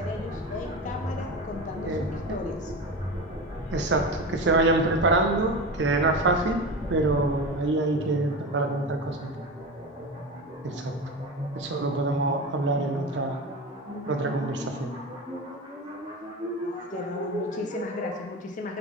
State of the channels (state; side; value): normal; both; correlation 0.25